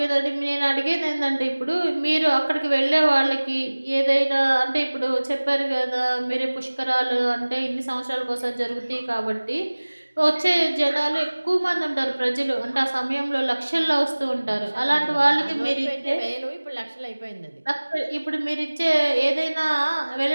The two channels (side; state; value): both; inverted; correlation -1.00